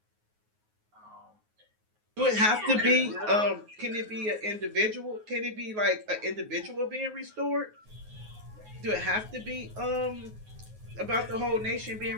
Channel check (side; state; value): left; late; 9.4 ms